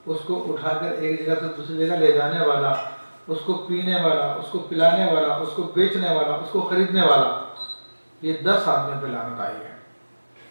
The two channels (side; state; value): both; inverted; correlation -1.00